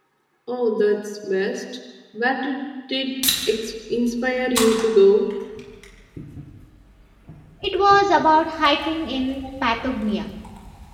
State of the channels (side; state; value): both; identical; correlation 1.00